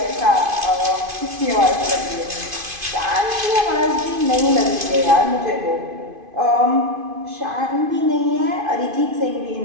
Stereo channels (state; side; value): late; left; 2.5 ms